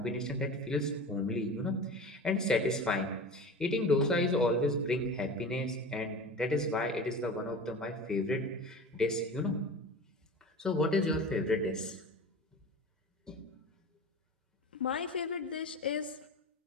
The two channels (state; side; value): normal; both; correlation 0.34